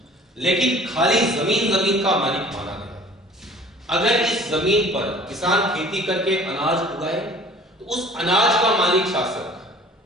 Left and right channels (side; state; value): both; normal; correlation 0.49